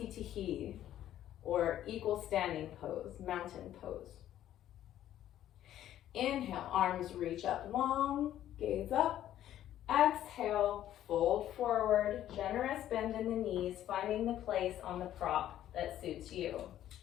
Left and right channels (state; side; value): quieter; right; 12.1 dB